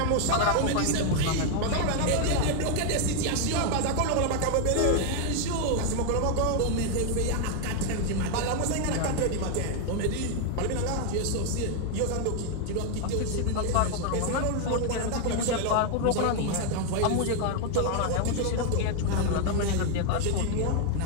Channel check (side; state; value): both; different; correlation 0.00